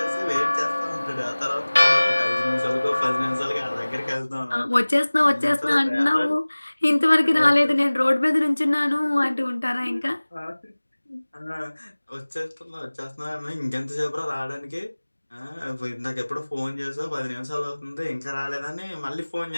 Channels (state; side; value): inverted; both; correlation -1.00